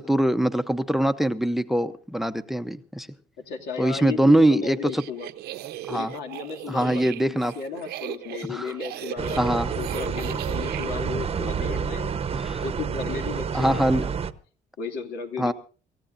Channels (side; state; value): both; normal; correlation 0.84